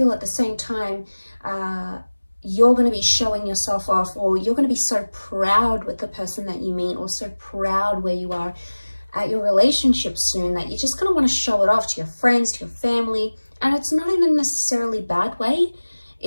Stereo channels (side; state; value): both; inverted; correlation -1.00